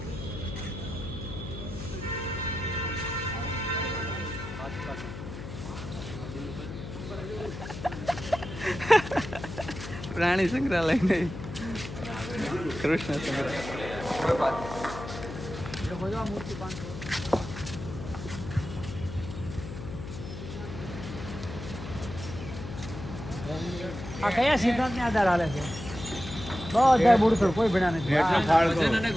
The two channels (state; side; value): noise; left; hum, 10 dB below the sound